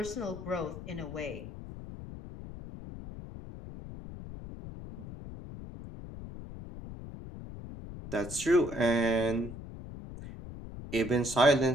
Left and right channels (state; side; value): noise; left; rumble, 12 dB below the sound